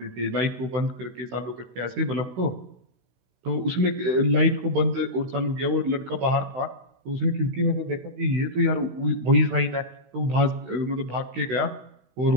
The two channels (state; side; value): late; left; 16 ms